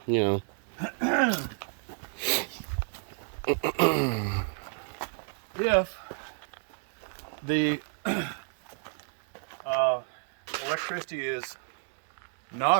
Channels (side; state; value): left; silent; 57 dB below the other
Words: you know. If the electricity is